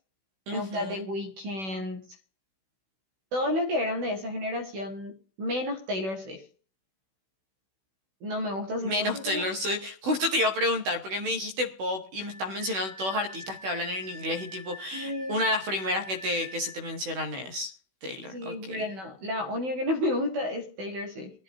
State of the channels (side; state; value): left; late; 16 ms